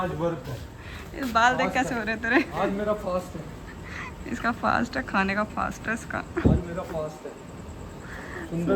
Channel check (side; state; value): both; identical; correlation 1.00